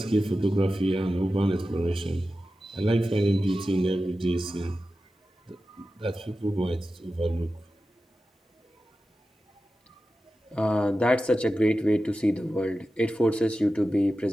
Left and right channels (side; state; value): both; normal; correlation 0.93